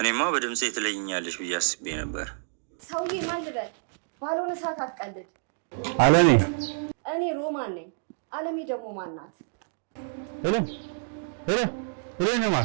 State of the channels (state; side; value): silent; left; digital silence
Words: በድምጼ ትለይኛለሽ ብዬ አስቤ ነበር። ሰውዬ ማን ልበል? ባልሆነ ሰዓት አትቀልድ። አለሜ። እኔ ሮማን ነኝ። አለሜ ደግሞ ማን ናት? ሄሎ